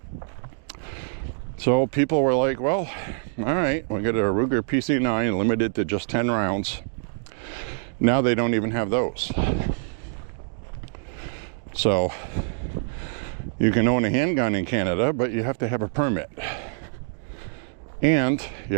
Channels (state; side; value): silent; left; digital silence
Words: So people were like, well, all right, we'll get a Ruger PC-9 limited to just 10 rounds. Now they don't even have those. So you can own a handgun in Canada, but you have to have a permit. And you